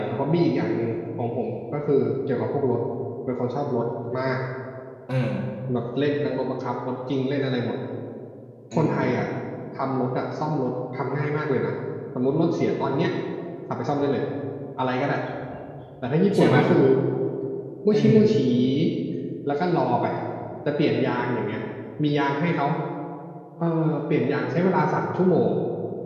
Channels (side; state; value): both; identical; correlation 1.00